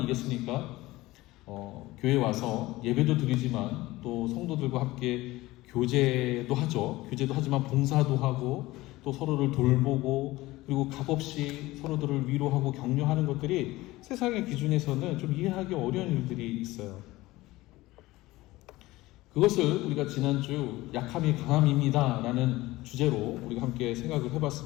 교회 와서 예배도 드리지만 또 성도들과 함께 교제도 하죠. 교제도 하지만 봉사도 하고 또 서로를 돌보고 그리고 값없이 서로들을 위로하고 격려하는 것들이 세상의 기준에서는 좀 이해하기 어려운 일들이 있어요. 그것을 우리가 지난주 약함이 강함입니다 라는 주제로 우리가 함께 생각을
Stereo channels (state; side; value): quieter; right; 18.8 dB